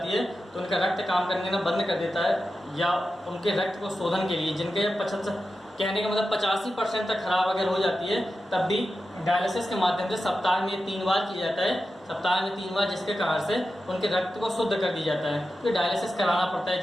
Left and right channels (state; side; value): normal; both; correlation 0.91